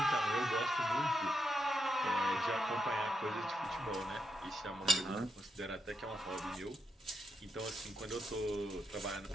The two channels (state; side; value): normal; both; correlation 0.82